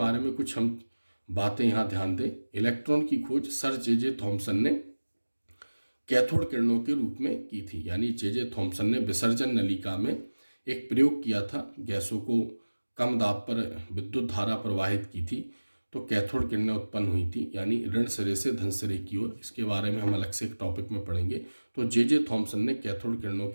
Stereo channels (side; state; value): both; inverted; correlation -1.00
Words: में कुछ हम बातें यहाँ ध्यान दें। इलेक्ट्रॉन की खोज सर जे थॉमसन ने कैथोड किरणों के रूप में की थी, यानी जे थॉमसन ने विसर्जन नलिका में एक प्रयोग किया था, गैसों को कम दाब पर विद्युत धारा प्रवाहित की थी, तो कैथोड किरणें उत्पन्न हुई थी, यानी ऋण सिरे से धन सिरे की ओर। इसके बारे में हम अलग से एक टॉपिक में पढ़ेंगे। तो जे थॉमसन ने कैथोड किरणों